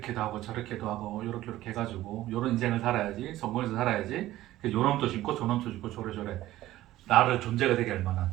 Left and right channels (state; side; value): quieter; left; 15.2 dB